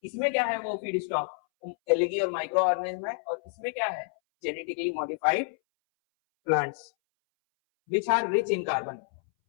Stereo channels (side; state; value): right; silent; 59 dB below the other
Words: इसमें क्या है? वो फीड स्टॉक एलगी और माइक्रो ऑर्गेनिज्म है। और इसमें क्या है? Genetically modified plants which are rich in carbon,